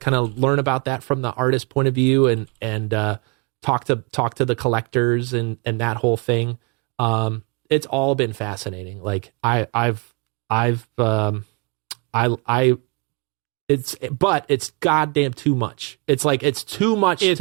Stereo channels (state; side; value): quieter; left; 31.0 dB